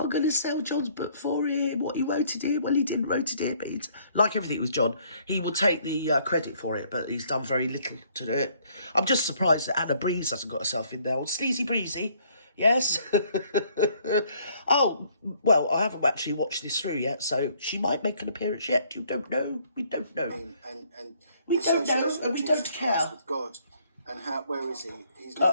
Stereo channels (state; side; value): inverted; both; correlation -0.63